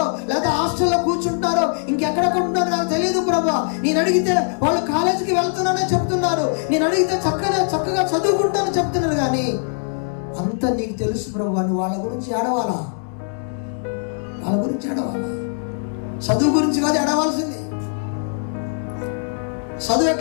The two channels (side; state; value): right; silent; 60 dB below the other